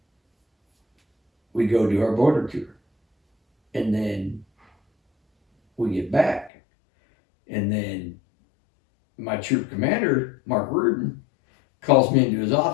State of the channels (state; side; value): drops out; right; at 6.5 s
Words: we go do our border tour. And then we get back. And then my troop commander, Mark Reardon, calls me into his